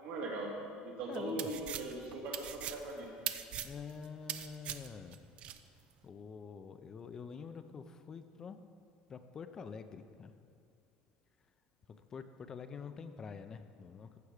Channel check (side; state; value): both; normal; correlation 0.32